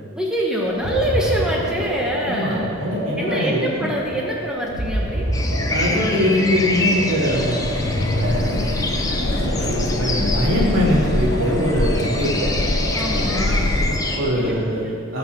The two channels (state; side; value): normal; both; correlation 0.48